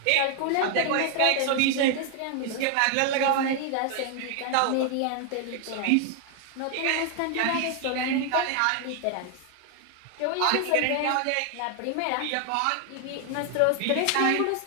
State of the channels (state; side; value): different; both; correlation 0.00